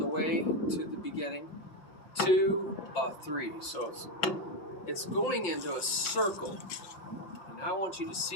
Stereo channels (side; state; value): right; late; 5.6 ms